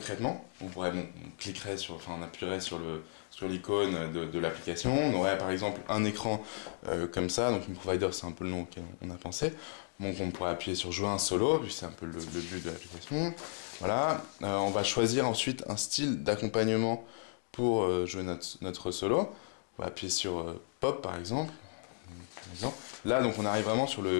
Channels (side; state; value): right; silent; digital silence